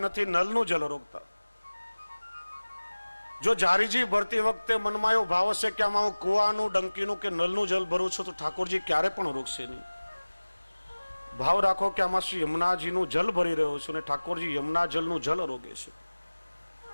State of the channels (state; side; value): inverted; both; correlation -1.00